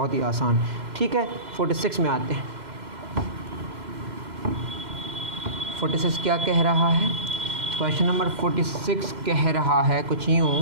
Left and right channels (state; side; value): late; left; 2.1 ms